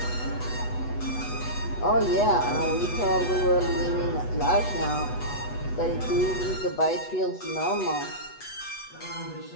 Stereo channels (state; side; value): late; right; 8.1 ms